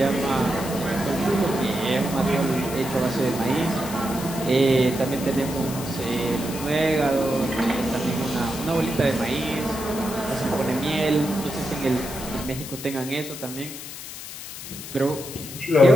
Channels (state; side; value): noise; left; hiss, 11 dB below the sound